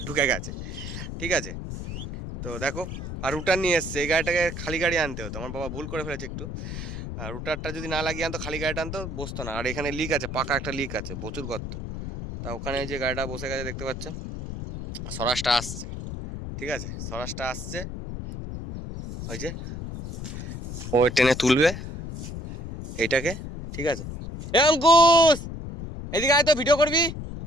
ঢুকে গেছে। ঠিক আছে, তো দেখো। আর রুটার নিয়ে এসছে, এই গাড়িটাকে খালি গাড়ি আনতে হতো, আমার বাবা ভুল করে ফেলেছে একটু। আর রুটারটা যদি না লাগিয়ে আনতো, খালি গাড়িটা আনতো, বসতো না। আর এখানে লিক আছে, পাকা একটা লিক আছে, প্রচুর গর্ত। তা ওখানে যে গাড়িটা বসে গেছে দেখতে পাচ্ছ, স্বরাজটা আসছে। ঠিক আছে, স্বরাজটা আসছে, ওই যে ও টেনে তুলবে এইটাকে। ঠিক আছে, এ অঙ্কুশ এদিকে আয় তো, ভিডিও করবি।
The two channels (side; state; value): left; noise; rumble, 7 dB below the sound